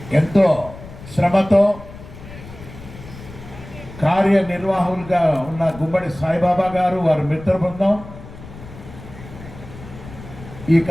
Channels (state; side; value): noise; left; rumble, 16 dB below the sound